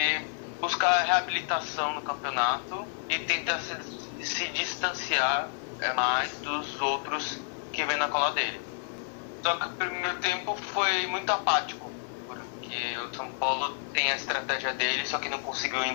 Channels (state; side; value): silent; right; digital silence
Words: buscar a reabilitação no campeonato e tentar se distanciar mais dos outros que vêm na cola dele. Só que o primeiro tempo foi muito apático, porque o São Paulo tem a estratégia dele, só que não conseguiu